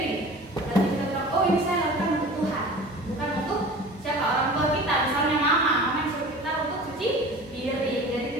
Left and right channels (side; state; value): both; normal; correlation 0.40